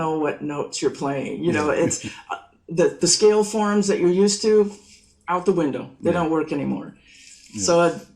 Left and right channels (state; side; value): identical; both; correlation 1.00